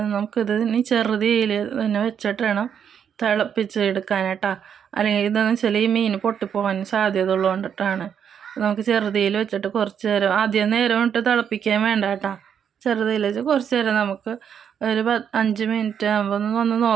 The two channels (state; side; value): quieter; left; 8.1 dB